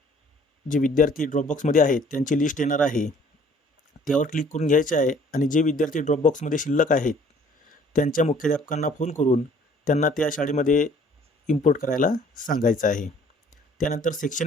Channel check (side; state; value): both; normal; correlation 0.56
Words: जे विद्यार्थी ड्रॉपबॉक्समध्ये आहेत त्यांची लिस्ट येणार आहे. त्यावर क्लिक करून घ्यायचे आहे आणि जे विद्यार्थी ड्रॉपबॉक्समध्ये शिल्लक आहेत त्यांच्या मुख्याध्यापकांना फोन करून त्यांना त्या शाळेमध्ये इम्पोर्ट करायला सांगायचं आहे. त्यानंतर